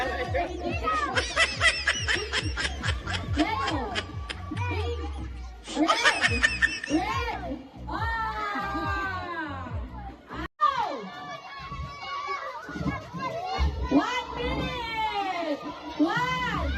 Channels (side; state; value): both; identical; correlation 1.00